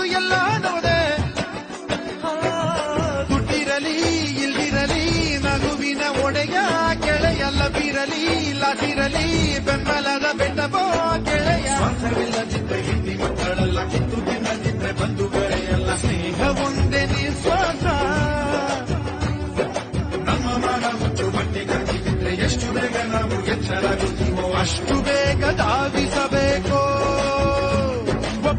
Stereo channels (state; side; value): identical; both; correlation 1.00